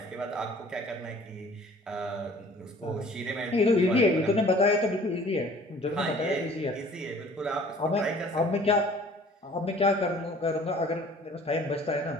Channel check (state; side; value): normal; both; correlation 0.51